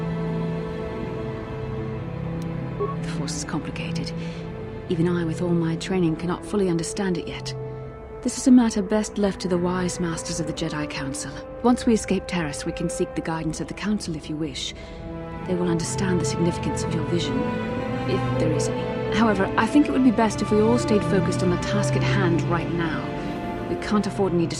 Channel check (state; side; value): identical; both; correlation 1.00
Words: The Force is complicated. Even I, with all my training, cannot fully understand it yet. This is a matter best left to the wise masters of the Jedi Council. Once we escape Taris, we can seek the guidance of the Council if you wish. They will understand the significance of your vision, if there is any. However, I think it would be best if we all stayed focused on the task at hand right now. We can't afford any